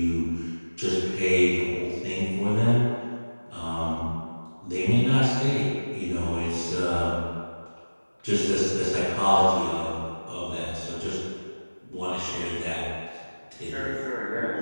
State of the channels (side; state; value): both; inverted; correlation -1.00